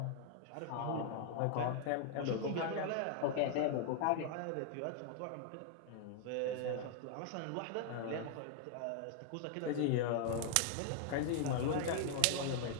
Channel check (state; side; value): different; both; correlation 0.00